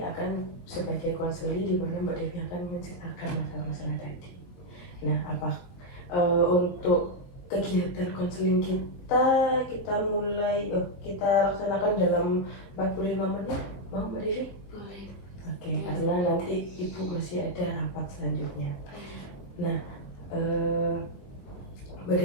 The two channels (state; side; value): late; right; 22 ms